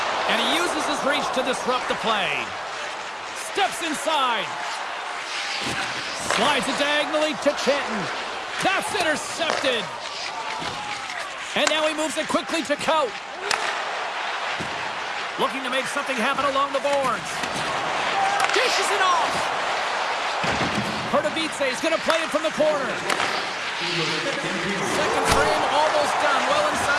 And he uses his reach to disrupt the play. Steps inside. Slides it diagonally to Chenton. That's intercepted. And now he moves it quickly to Cout. Looking to make something happen along the boards. Dishes it off. Pardubice is going to play it from the corner. Second frame almost done. Well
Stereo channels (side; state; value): both; identical; correlation 1.00